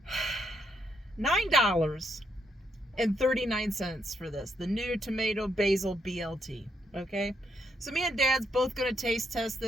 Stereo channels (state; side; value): normal; both; correlation 0.76